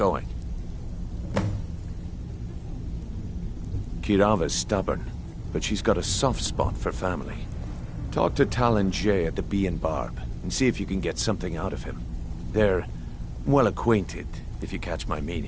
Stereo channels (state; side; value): identical; both; correlation 1.00